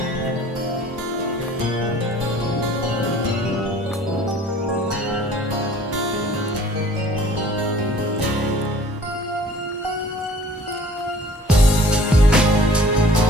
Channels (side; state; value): both; normal; correlation 0.51